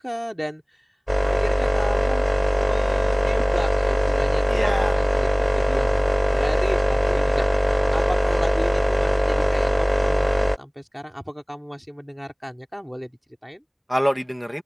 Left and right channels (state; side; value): identical; both; correlation 1.00